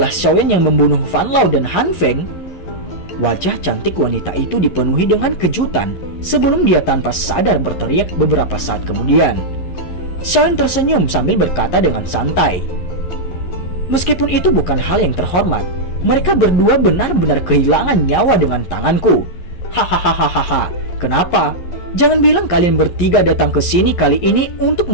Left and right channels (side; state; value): right; late; 11 ms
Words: Xiaoyan yang membunuh Fan Lao dan Han Feng? Wajah cantik wanita itu dipenuhi dengan kejutan sebelum dia tanpa sadar berteriak beberapa saat kemudian. Xiaoyan tersenyum sambil berkata dengan santai, meskipun itu bukan hal yang terhormat, mereka berdua benar-benar kehilangan nyawa dengan tanganku. Hahaha, kenapa? Jangan bilang kalian bertiga datang ke sini kali ini untuk